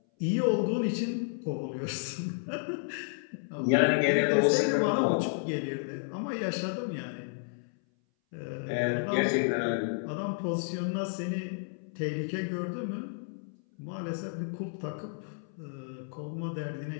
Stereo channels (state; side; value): silent; right; 57 dB below the other